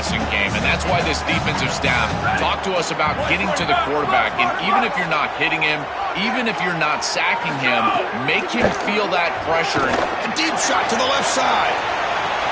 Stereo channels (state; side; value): identical; both; correlation 1.00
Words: game, and that's why this defensive staff talked to us about getting to the quarterback, and even if you're not hitting him, even if you're not sacking him, make him feel that pressure. A deep shot to the left side.